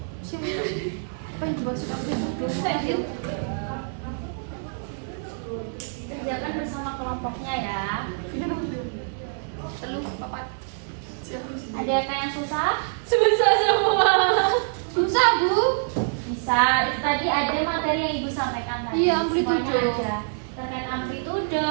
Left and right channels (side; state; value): left; silent; 59 dB below the other